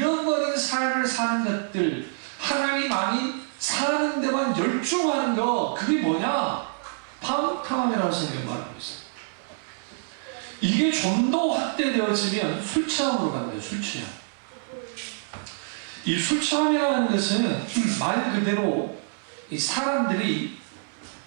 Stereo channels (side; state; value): left; silent; 57 dB below the other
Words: 삶을 사는 것들, 하나님 아닌 사는 데만 열중하는 거, 그게 뭐냐? 방탕함이라고 성경이 말하고 있어요. 이게 좀 더 확대되어지면 술 취함으로 간 거예요. 술 취함. 이 술 취함이라는 것은 말 그대로 이 사람들이